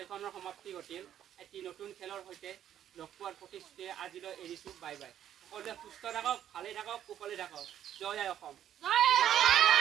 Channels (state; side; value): quieter; left; 10.6 dB